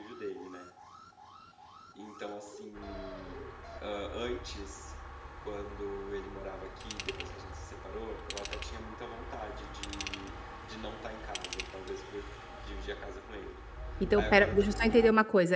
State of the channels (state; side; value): identical; both; correlation 1.00